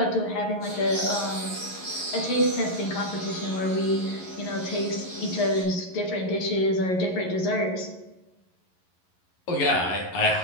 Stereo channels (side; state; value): right; late; 11 ms